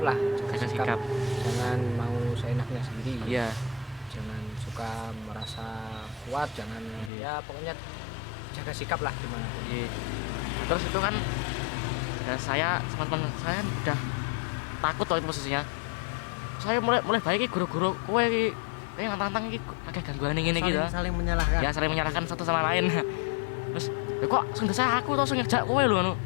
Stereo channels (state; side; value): drops out; right; at 7.1 s